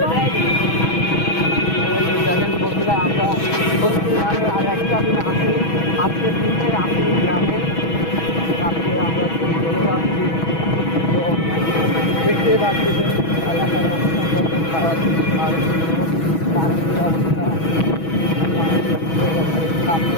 দেখেন বন্ধুরা, আমরা মানে আর একটা দিন আসি, আজকের দিনে আসি গ্রামে, কালকে আমরা চলে যাচ্ছি। তো দেখতে পাচ্ছেন এলাকার অবস্থা কত খারাপ, আর পানির অবস্থা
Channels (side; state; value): right; late; 6.2 ms